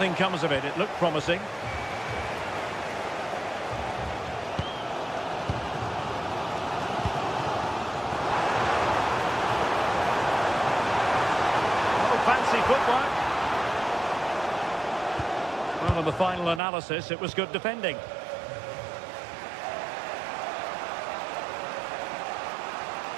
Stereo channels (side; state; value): left; drops out; at 16.6 s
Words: comes of it. It looked promising. Oh, fancy footwork. Well, in the final analysis, it was good defending.